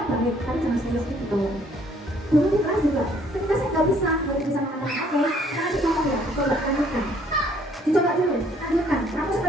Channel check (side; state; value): both; normal; correlation 0.63